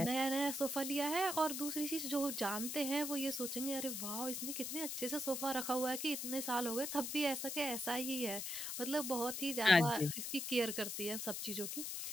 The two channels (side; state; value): left; noise; hiss, 4 dB below the sound